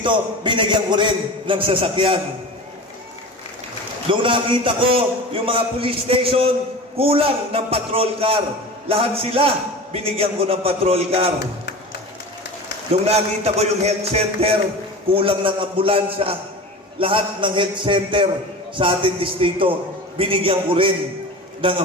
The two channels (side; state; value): both; normal; correlation 0.33